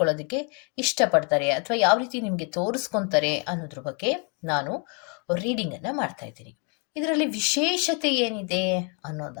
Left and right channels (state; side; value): quieter; right; 36.9 dB